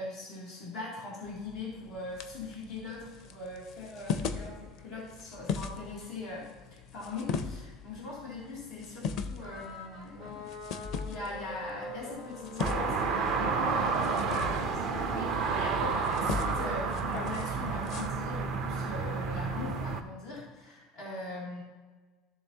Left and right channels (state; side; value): normal; both; correlation 0.33